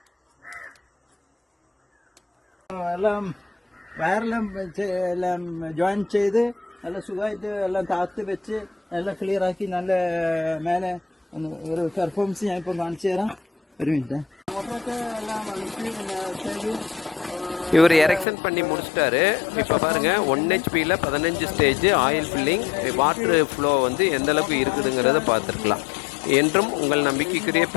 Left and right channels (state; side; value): drops out; right; at 18.2 s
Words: എല്ലാം വയറെല്ലാം എല്ലാം ജോയിൻ ചെയ്ത് നല്ല സുഖമായിട്ട് എല്ലാം താത്ത് വെച്ച് എല്ലാം ക്ലിയർ ആക്കി നല്ല മേലെ ഒരു പെർഫോമൻസ് ഞാൻ ഇപ്പോൾ കാണിച്ചു തരാം. ഒരു മിനിറ്റ്. മോട്ടറൊക്കെ എല്ലാം ചെയ്തു. இவர் எரெக்ஷன் பண்ணி முடிச்சிட்டாரு. இப்போ பாருங்கள், 1 HP 15 stage oil filling, water flow வந்து எந்த அளவுக்கு இருக்குதுங்கிறத பார்த்துருக்கலாம். என்றும் உங்கள் நம்பிக்கைக்குரிய